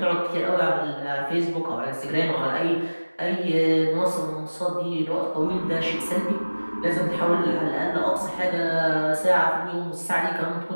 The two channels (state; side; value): inverted; both; correlation -1.00